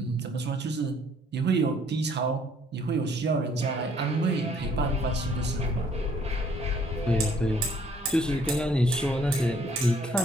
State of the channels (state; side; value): normal; both; correlation 0.62